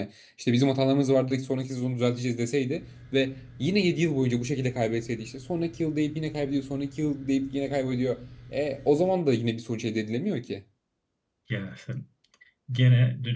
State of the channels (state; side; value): identical; both; correlation 1.00